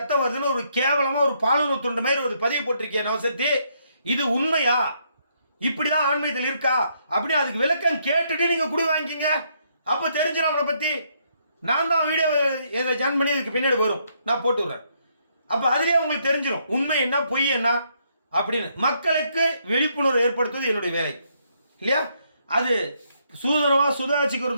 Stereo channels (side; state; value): both; inverted; correlation -0.73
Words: வருதுன்னு ஒரு கேவலமா ஒரு பாலுறவு துண்டு மாதிரி ஒரு பதிவு போட்டிருக்கேன் நவசக்தி. இது உண்மையா, இப்படிதான் ஆன்மீகத்தில் இருக்கா அப்படி அதுக்கு விளக்கம் கேட்டுட்டு நீங்க குடி வாங்கிக்கிங்க. அப்போ தெரிஞ்சிடும் அவனை பத்தி. நான் தான் வீடியோ ஜாயின் பண்ணி இதுக்கு பின்னாடி வரும், நான் போட்டு விடுறேன். அப்போ அதுலேயே உங்களுக்கு தெரிஞ்சிடும் உண்மை என்ன பொய் என்ன அப்படின்னு. மக்களுக்கு விழிப்புணர்வு ஏற்படுத்துவது என்னுடைய வேலை இல்லையா? அது